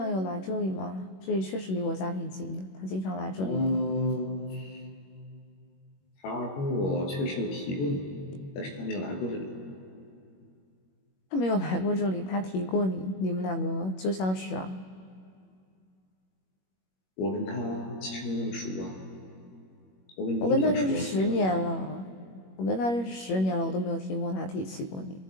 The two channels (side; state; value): right; late; 21 ms